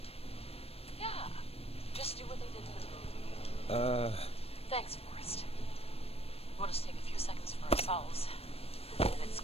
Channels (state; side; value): late; right; 0.28 ms